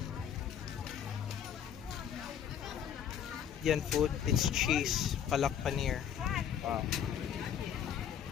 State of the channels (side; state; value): right; quieter; 8.9 dB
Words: Yan food, it's cheese, palak paneer. Wow.